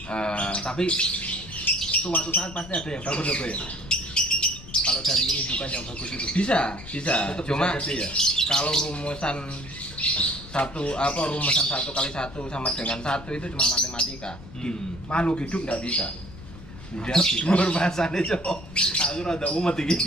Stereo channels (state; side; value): noise; left; rumble, 16 dB below the sound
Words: tapi suatu saat pasti ada yang bagus ya? Kalau dari indukan yang bagus itu bisa. Cuma bisa ya? Kalau rumusan 1 kali 1 sama dengan 1 itu cuma matematika. Makhluk hidup nggak bisa. Nggak bisa bahasanya cok. Aku rada umat ini.